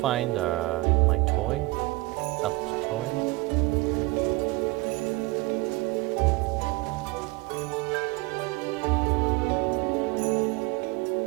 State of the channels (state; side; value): quieter; left; 22.7 dB